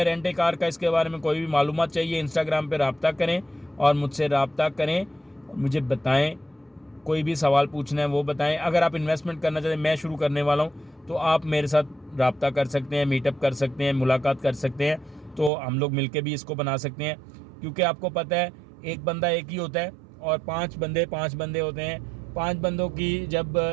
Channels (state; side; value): drops out; left; at 15.5 s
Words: रेंट ए कार का। इसके बारे में कोई भी मालूमात चाहिए, इंस्टाग्राम पे रब्ता करें और मुझसे रब्ता करें, मुझे बताएं। कोई भी सवाल पूछना है वो बताएं। अगर आप इन्वेस्टमेंट करना चाहते हैं, मैं शुरू करने वाला हूँ, तो आप मेरे साथ रब्ता कर सकते हैं, मीटअप कर सकते हैं, मुलाकात कर सकते हैं। तो हम लोग मिलके भी इसको बना सकते हैं, क्योंकि आपको पता है एक बंदा एक ही होता है और 5 बंदे होते हैं। 5 बंदों की जब